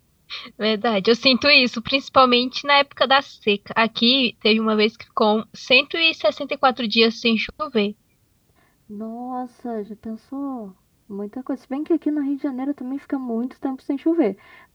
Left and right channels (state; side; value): identical; both; correlation 1.00